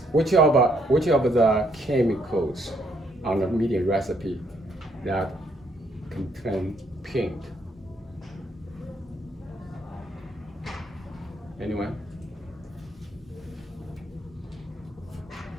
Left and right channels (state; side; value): normal; both; correlation 0.70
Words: Which of the chemicals on the media recipe that contain pink? Anyone?